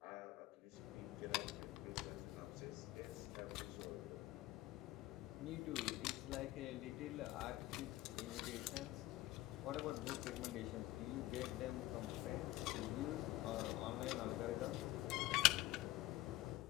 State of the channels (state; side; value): quieter; right; 17.2 dB